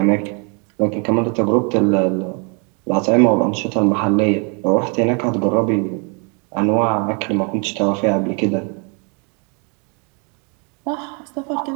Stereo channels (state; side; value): quieter; left; 35.4 dB